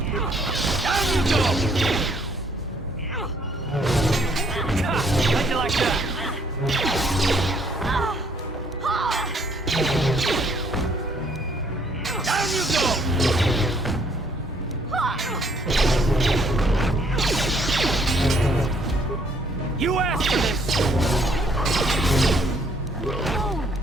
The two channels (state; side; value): normal; both; correlation 0.65